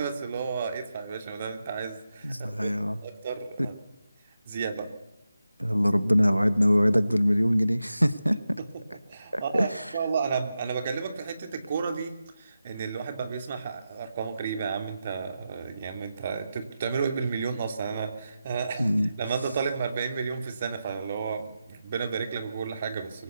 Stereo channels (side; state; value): both; inverted; correlation -0.90